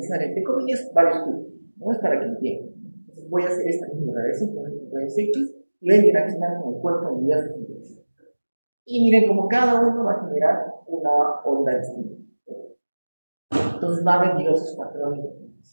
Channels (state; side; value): inverted; both; correlation -1.00